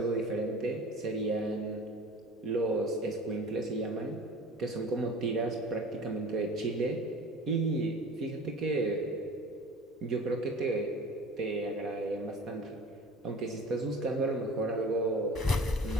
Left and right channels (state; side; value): normal; both; correlation 0.40